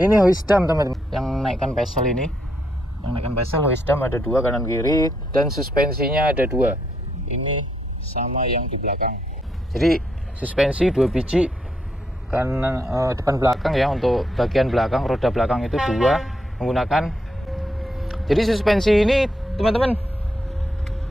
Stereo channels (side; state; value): both; normal; correlation 0.78